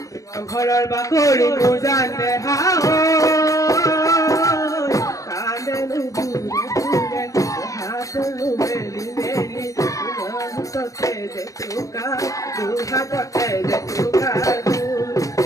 ঘৰৰ বাকৰি বুজানে হাও কান্দে বুৰে বুৰে হাতলো মেলি মেলি হাততে যে চুকা দুহাততে যে চুকা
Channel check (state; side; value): late; right; 0.16 ms